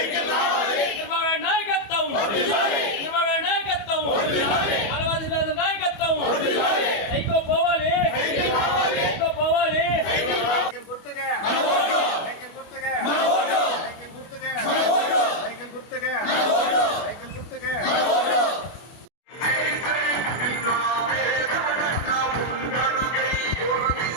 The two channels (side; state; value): right; late; 25 ms